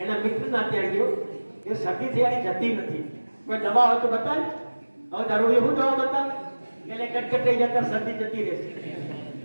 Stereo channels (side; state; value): both; inverted; correlation -1.00